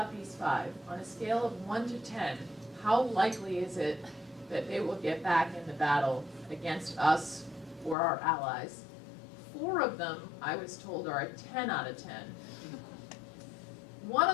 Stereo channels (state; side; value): drops out; right; at 8.0 s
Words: these 5. On a scale of 1 to 10, how likely is it that they will get back in the battle against us or our allies? 4 of them, I was told, are a 10 out of 10. 1